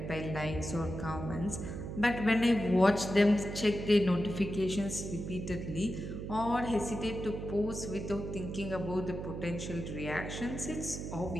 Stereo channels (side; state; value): right; noise; hum, 6 dB below the sound